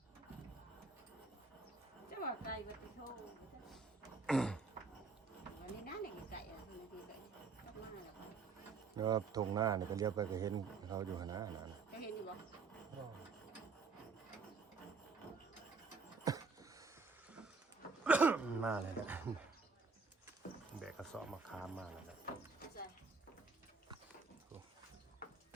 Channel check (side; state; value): left; quieter; 4.6 dB